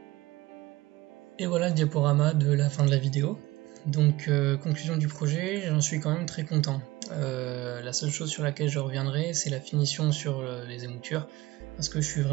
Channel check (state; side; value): quieter; left; 19.3 dB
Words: Et voilà le diaporama de la fin de la vidéo. Donc conclusion du projet, j'en suis quand même très content. La seule chose sur laquelle je reviendrai, c'est la finition sur les émoutures, parce que je suis